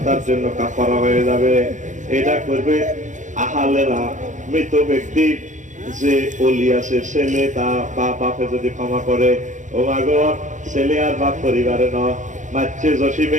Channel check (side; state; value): left; late; 0.36 ms